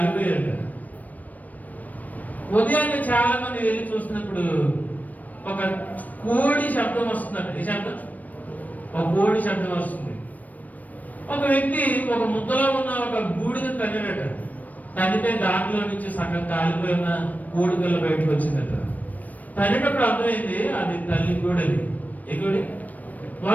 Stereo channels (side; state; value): right; late; 0.077 ms